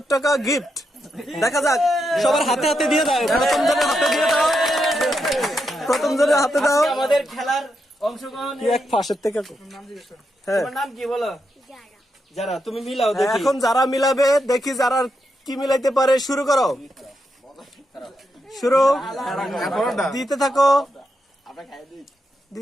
টাকা গিফট। দেখা যাক, সবার হাতে হাতে দিয়ে দাও। প্রথম জনের হাতে দিয়ে দাও, প্রথম জনের হাতে দাও। আজকে আমাদের খেলার অংশগ্রহণ। কি এক ফাঁসের থেকে হ্যাঁ, তোমার নাম কি বলো? যারা, তুমি মিলাও দেখি। এখন যারা মিলাবে দেখি যারা কি মিলাইতে পারে। শুরু করো, শুরু দিতে থাকো,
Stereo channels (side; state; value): both; normal; correlation 0.83